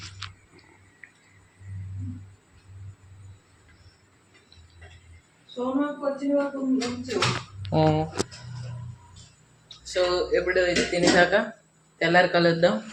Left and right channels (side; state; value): both; identical; correlation 1.00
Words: సో ఎప్పుడు ఇది తినేసాక తెల్లారి కలుద్దాం.